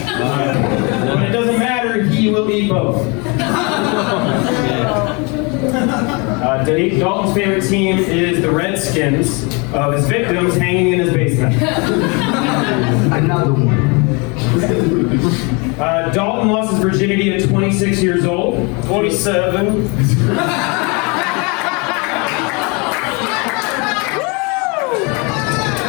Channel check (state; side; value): quieter; right; 30.4 dB